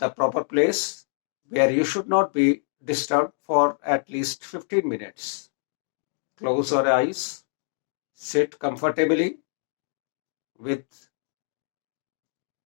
proper place where you should not be disturbed for at least 15 minutes. Close your eyes, sit comfortably with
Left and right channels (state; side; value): silent; right; digital silence